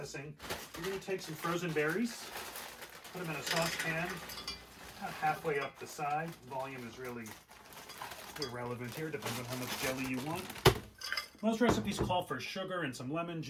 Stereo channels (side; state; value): both; identical; correlation 1.00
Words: you're gonna take some frozen berries, put them in a saucepan, about halfway up the side. Volume is really irrelevant here, depends on how much jelly you want. Most recipes call for sugar and some lemon